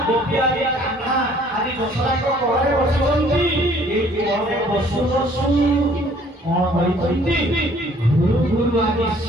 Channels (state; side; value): normal; both; correlation 0.58